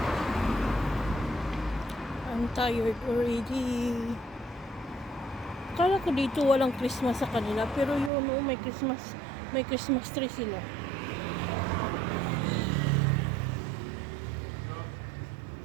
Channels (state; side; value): drops out; left; at 8.1 s